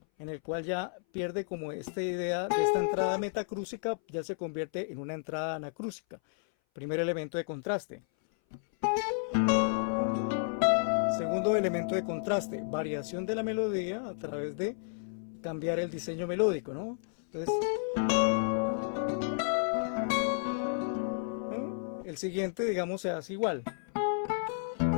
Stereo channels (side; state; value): right; silent; 56 dB below the other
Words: en el cual ya pierde como esta idea de esta entrada metacrúsica, ya se convierte en una entrada anacrúsica. Primer elemento de contraste. Segundo elemento de contraste, variación de la melodía a través de cambiar el diseño melódico, ¿no? Entonces, el siguiente, digamos, se hace igual.